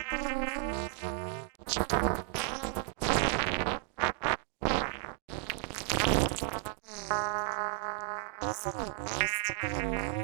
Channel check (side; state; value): left; silent; digital silence